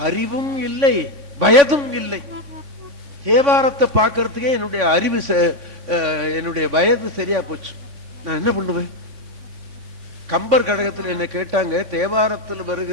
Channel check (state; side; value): late; left; 3.3 ms